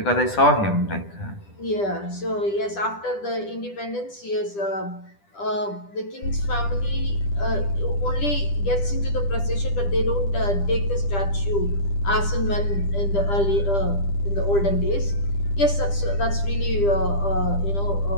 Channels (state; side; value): late; right; 10 ms